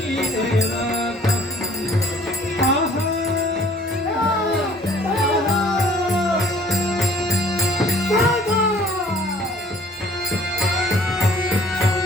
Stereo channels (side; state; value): both; normal; correlation 0.55